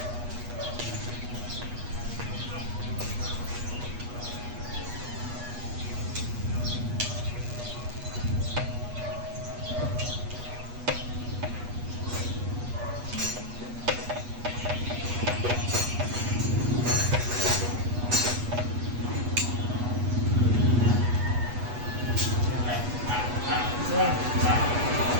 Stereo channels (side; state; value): left; late; 8.2 ms